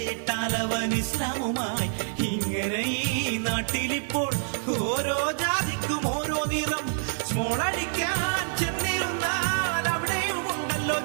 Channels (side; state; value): left; silent; digital silence